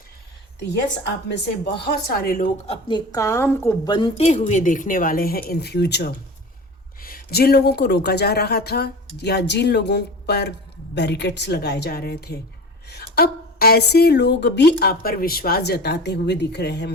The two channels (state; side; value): normal; both; correlation 0.34